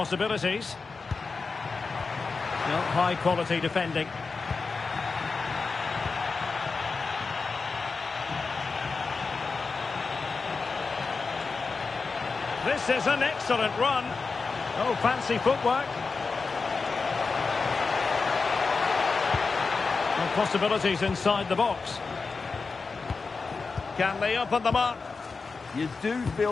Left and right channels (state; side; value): quieter; right; 4.5 dB